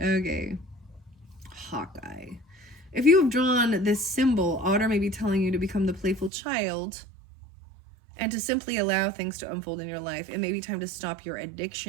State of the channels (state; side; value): drops out; left; at 6.3 s